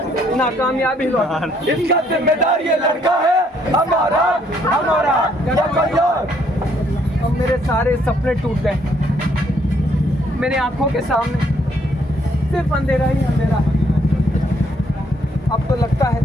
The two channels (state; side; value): normal; both; correlation 0.68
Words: नाकामयाब ही लौटा। इसका जिम्मेदार ये लड़का है, हमारा हमारा या कोई और। अब मेरे सारे सपने टूट गए, मेरी आंखों के सामने सिर्फ अंधेरा ही अंधेरा है। अब तो लगता है